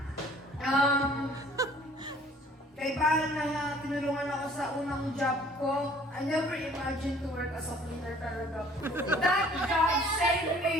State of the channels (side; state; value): both; normal; correlation 0.54